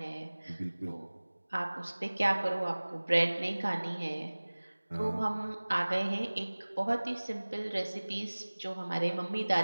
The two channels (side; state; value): both; inverted; correlation -1.00